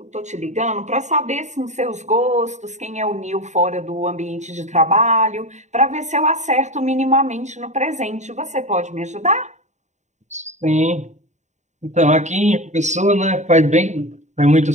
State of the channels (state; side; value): late; left; 0.34 ms